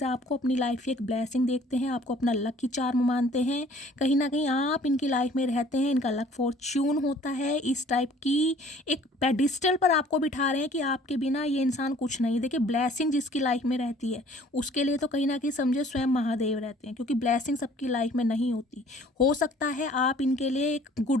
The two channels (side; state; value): both; normal; correlation 0.54